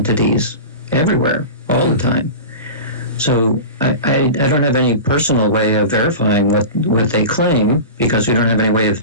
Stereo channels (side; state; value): both; inverted; correlation -0.30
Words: everywhere, all the time. So I don't have any personal way of verifying what they claim, because we don't have any way of